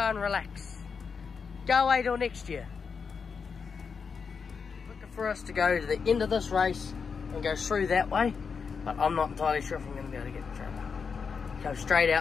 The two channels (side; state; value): right; quieter; 5.7 dB